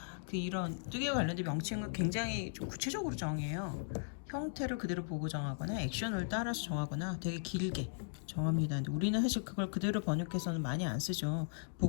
그 이런 뜨개와 관련된 명칭을 굉장히 좀 구체적으로 정해요. 형태를 그대로 보고 정하거나 액션을 따라서 정하거나 되게 길게 정합니다. 근데 우리는 사실 그걸 그대로 번역해서는 많이 안 쓰죠.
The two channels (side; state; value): right; silent; digital silence